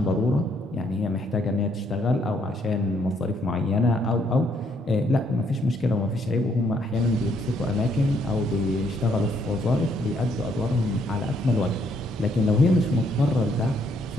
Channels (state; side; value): normal; both; correlation 0.70